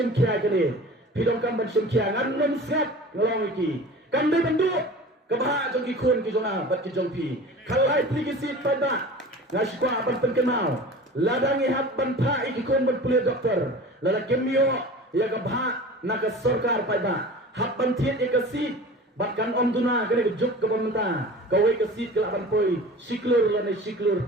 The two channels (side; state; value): both; normal; correlation 0.38